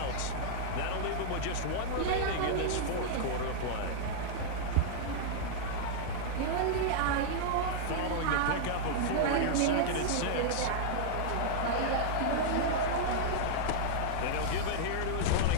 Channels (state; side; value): different; both; correlation -0.01